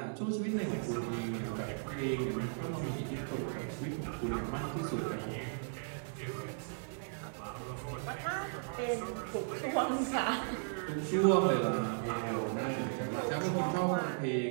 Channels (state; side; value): silent; left; digital silence